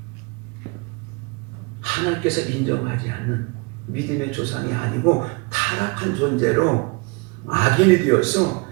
하나님께서 인정하지 않는 믿음의 조상이 아니고 타락한 존재로 악인이 되어서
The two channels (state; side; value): quieter; left; 29.5 dB